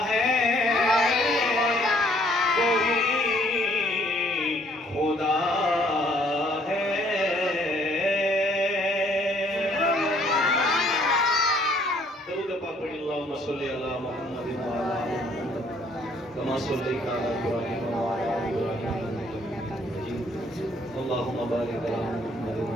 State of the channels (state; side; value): normal; both; correlation 0.63